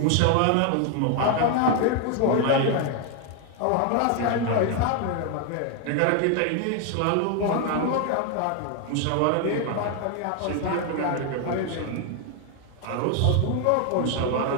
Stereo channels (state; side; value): different; both; correlation 0.01